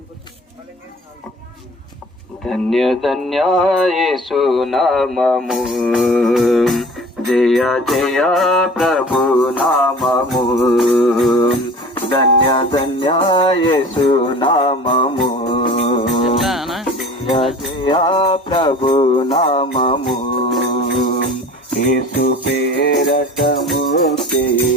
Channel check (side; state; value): both; normal; correlation 0.43